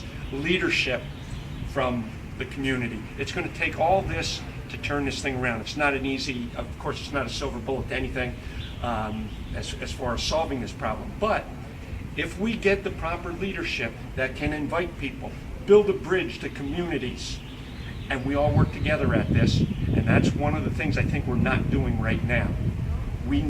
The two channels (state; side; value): identical; both; correlation 1.00